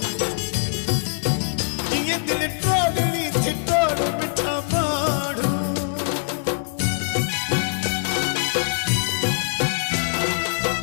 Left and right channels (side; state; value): right; silent; digital silence